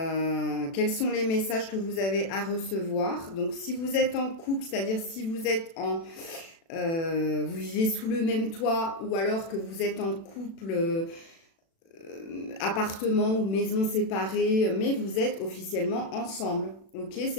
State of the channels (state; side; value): late; right; 36 ms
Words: sont les messages que vous avez à recevoir. Donc si vous êtes en couple, c'est-à-dire si vous êtes vous vivez sous le même toit, ou alors que vous êtes en couple, appartement ou maison séparée, mais vous êtes officiellement ensemble, ok,